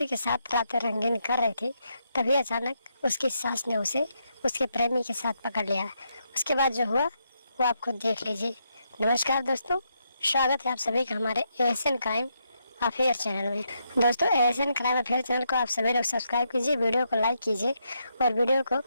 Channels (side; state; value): both; inverted; correlation -0.79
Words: के साथ रातें रंगीन कर रही थी, तभी अचानक उसकी सास ने उसे उसके प्रेमी के साथ पकड़ लिया। उसके बाद जो हुआ वो आप खुद देख लीजिए। नमस्कार दोस्तों, स्वागत है आप सभी का हमारे एशियन क्राइम अफेयर चैनल में। दोस्तों, एशियन क्राइम अफेयर चैनल को आप सभी लोग सब्सक्राइब कीजिए, वीडियो को लाइक कीजिए और वीडियो को